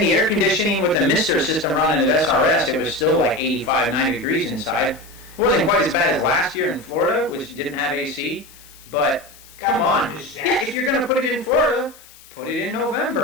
air conditioning with the mister system running at SRS, it was still like 85, 90 degrees inside. It wasn't quite as bad as last year in Florida, which didn't have AC, but come on. Yeah, if you're going to put it in Florida, put it in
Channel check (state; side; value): noise; left; hiss, 23 dB below the sound